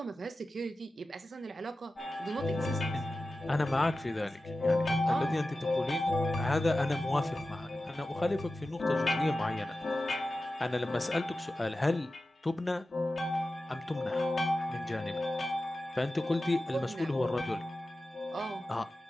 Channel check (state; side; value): normal; both; correlation 0.94